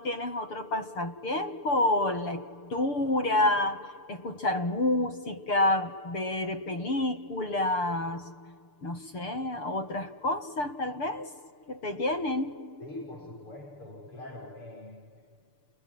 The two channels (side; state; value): right; late; 6.8 ms